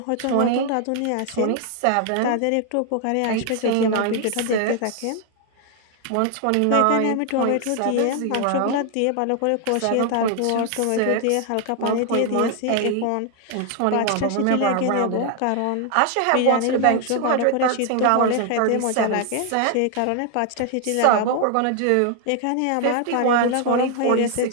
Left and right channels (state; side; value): different; both; correlation 0.00